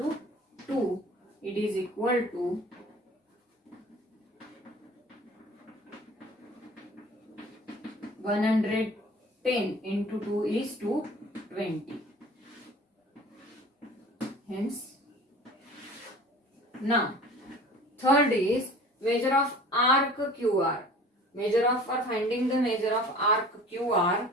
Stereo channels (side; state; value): both; normal; correlation 0.44